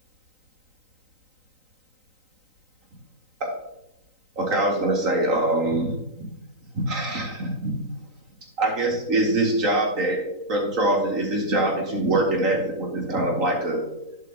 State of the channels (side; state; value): left; late; 3.9 ms